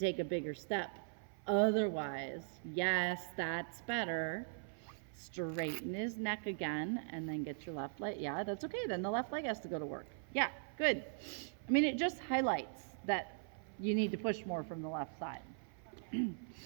a bigger step Otherwise, yes, that's better. Straighten his neck again and then get your left leg. Yeah, that's okay. Then the left leg has to go to work. Yeah, good. I mean, it just highlights that you need to push more from the left side.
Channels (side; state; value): left; silent; 51 dB below the other